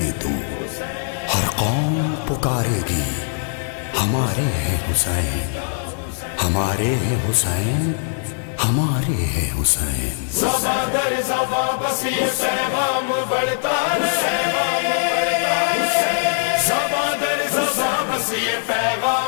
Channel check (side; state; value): right; silent; digital silence